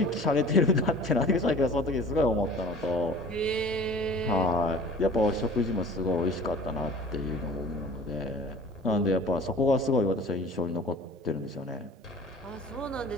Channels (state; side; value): normal; both; correlation 0.44